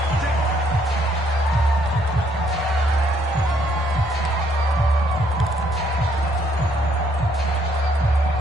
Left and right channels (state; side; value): normal; both; correlation 0.68